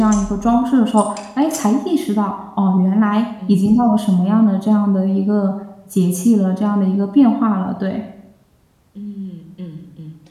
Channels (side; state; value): both; identical; correlation 1.00